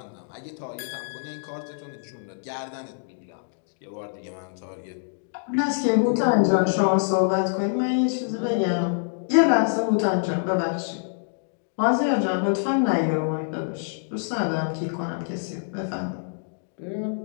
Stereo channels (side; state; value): right; silent; digital silence